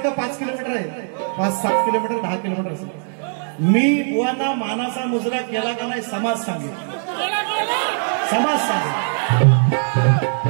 5 किलोमीटर आहे 5-7 किलोमीटर 10 किलोमीटर असेल मी बुवांना मानाचा मुजरा केला का नाही समाज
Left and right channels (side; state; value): left; silent; 62 dB below the other